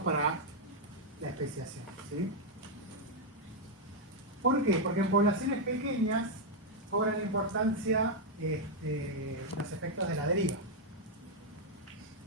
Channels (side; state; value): both; normal; correlation -0.01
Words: para la especiación, ¿sí? ¿Por qué? Porque en poblaciones pequeñas cobran importancia los efectos de la deriva.